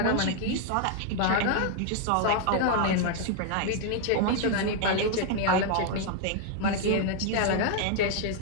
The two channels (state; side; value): different; both; correlation 0.00